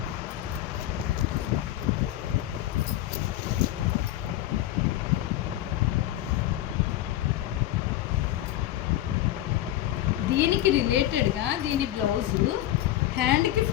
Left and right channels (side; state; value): right; quieter; 13.7 dB